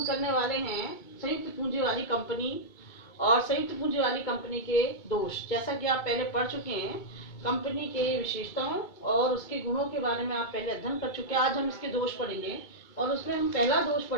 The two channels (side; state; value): right; late; 2.3 ms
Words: करने वाले हैं संयुक्त पूंजी वाली कंपनी और संयुक्त पूंजी वाली कंपनी के दोष। जैसा कि आप पहले पढ़ चुके हैं, कंपनी के विशेषताओं और उसके गुणों के बारे में आप पहले अध्ययन कर चुके हैं। आज हम इसके दोष पढ़ेंगे और उसमें हम पहला दोष